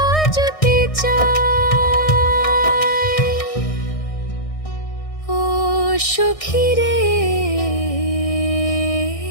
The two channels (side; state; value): right; late; 1.6 ms